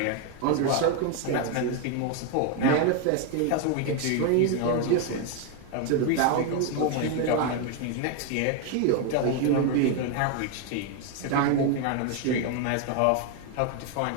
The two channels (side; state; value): both; different; correlation 0.01